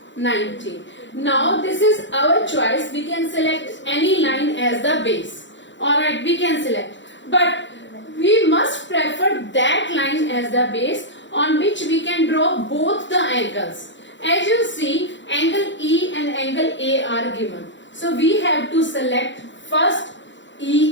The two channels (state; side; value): late; right; 0.54 ms